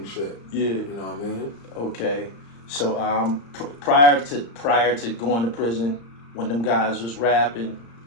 shit. Yeah. You know what I mean? Okay. So prior to going to prison, when them guys was rapping,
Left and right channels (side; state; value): right; late; 35 ms